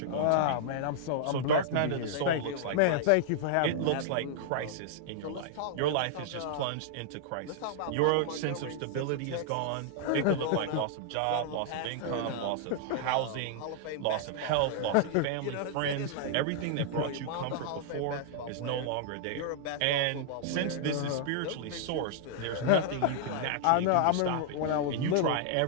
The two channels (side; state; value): both; different; correlation -0.01